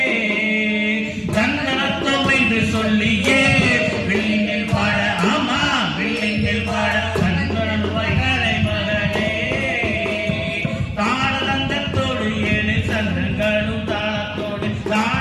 தந்தளத்தோம் என்று சொல்லியே வெள்ளினில் பாட ஆமா வெள்ளினில் பாட வந்தருள் வாய்களை மகளே தாளந்தத்தோடு ஏழு சந்தங்களும் தாளத்தோடு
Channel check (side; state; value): both; identical; correlation 1.00